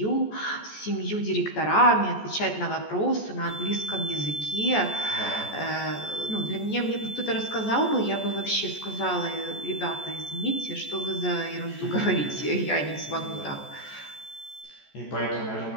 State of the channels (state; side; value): late; right; 14 ms